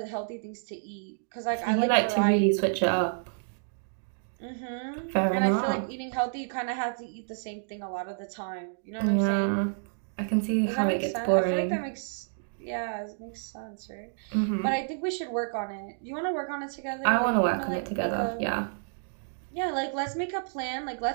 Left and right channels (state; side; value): silent; left; digital silence